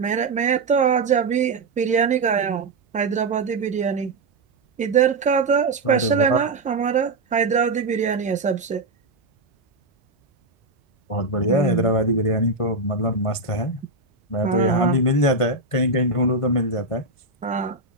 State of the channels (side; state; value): left; quieter; 3.3 dB